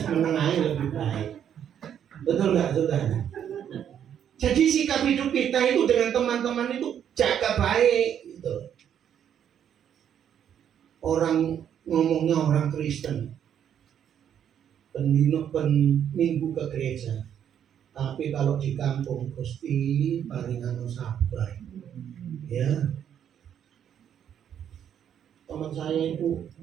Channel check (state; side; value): quieter; left; 9.2 dB